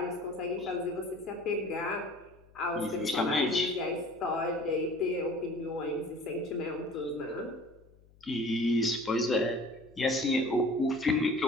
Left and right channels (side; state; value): left; noise; hum, 27 dB below the sound